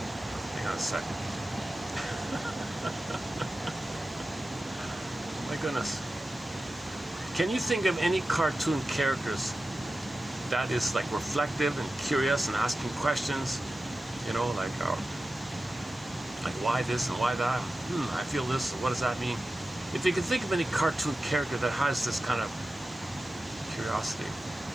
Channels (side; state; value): right; noise; hiss, 29 dB below the sound